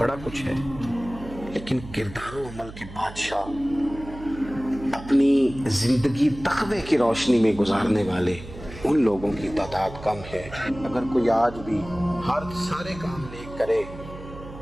کچھ ہے، لیکن کردار و عمل کے بادشاہ، اپنی زندگی تقوی کی روشنی میں گزارنے والے، ان لوگوں کی تعداد کم ہے۔ اگر کوئی آج بھی سارے کام نیک کرے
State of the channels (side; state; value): right; noise; hum, 14 dB below the sound